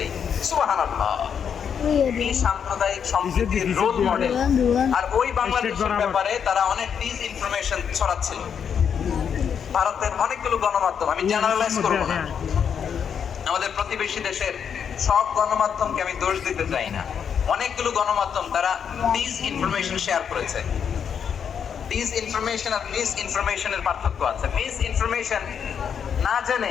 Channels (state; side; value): quieter; right; 7.5 dB